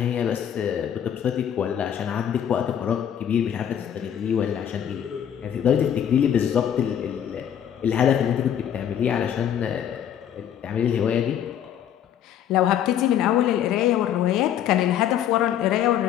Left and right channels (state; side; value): quieter; right; 9.7 dB